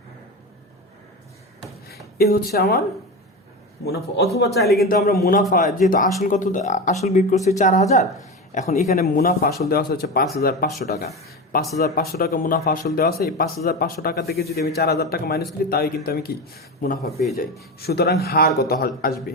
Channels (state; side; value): normal; both; correlation 0.22